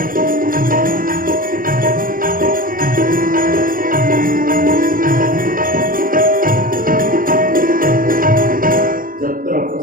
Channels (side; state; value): left; late; 0.41 ms